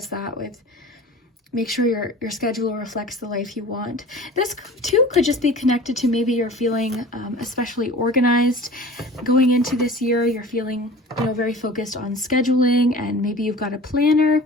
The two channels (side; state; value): both; normal; correlation 0.40